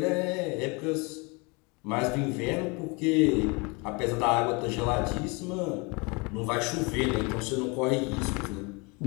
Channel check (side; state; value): right; quieter; 29.2 dB